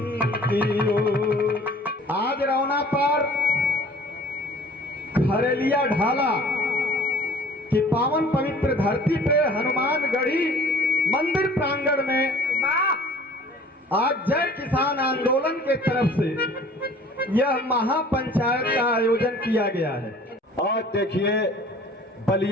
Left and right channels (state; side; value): normal; both; correlation 0.50